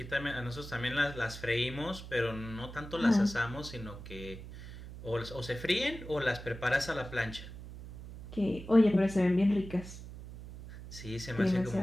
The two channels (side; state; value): right; noise; hum, 13 dB below the sound